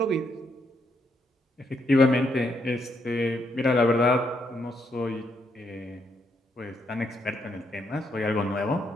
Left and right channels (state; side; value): normal; both; correlation 0.76